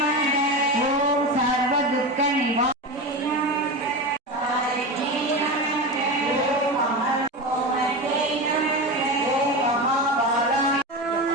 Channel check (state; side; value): normal; both; correlation 0.22